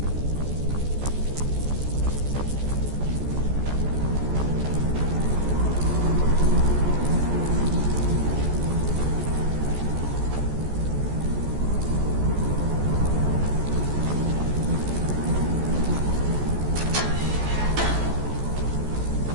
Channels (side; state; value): left; late; 14 ms